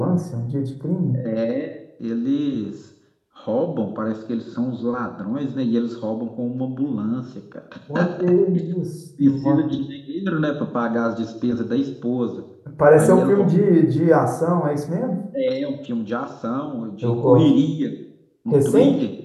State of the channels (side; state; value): both; identical; correlation 1.00